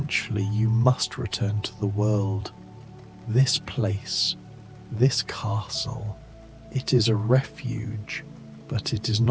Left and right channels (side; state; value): both; identical; correlation 1.00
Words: you must return to the world. This place, this castle, it is a refuge, but it is